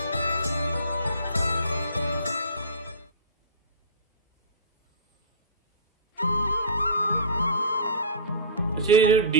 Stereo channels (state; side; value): inverted; both; correlation -0.32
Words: अच्छा, ये जो